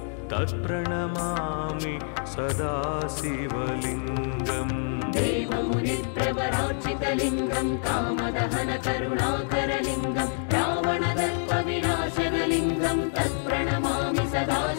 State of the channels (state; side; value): silent; right; 60 dB below the other